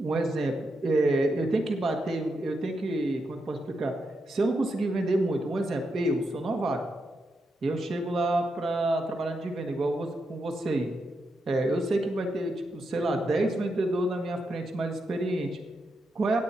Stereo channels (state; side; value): normal; both; correlation 0.84